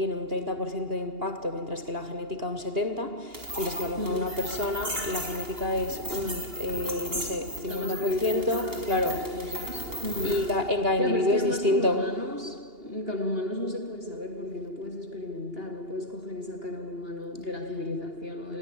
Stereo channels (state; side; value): late; left; 2.8 ms